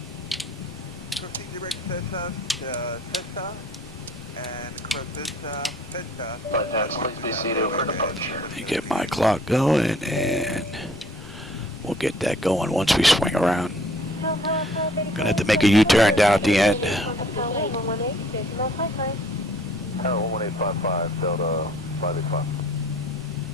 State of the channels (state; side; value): normal; both; correlation 0.56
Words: Proceed direct Cessna, Cessna, and cross Cessna. Please be seated for departure. Let me get my clock going and we'll get that going once we swing around. Gonna have to make a U-turn down at the end. 1855 Delta 585.